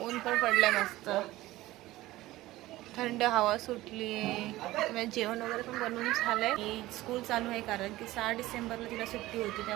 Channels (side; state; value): left; quieter; 17.3 dB